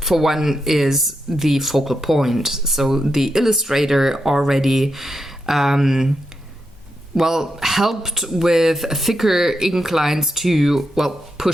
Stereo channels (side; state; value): both; normal; correlation 0.85